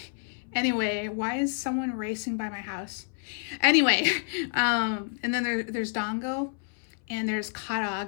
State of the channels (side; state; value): right; silent; 58 dB below the other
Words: Anyway, why is someone racing by my house? Anyway, and then there's dango, and there's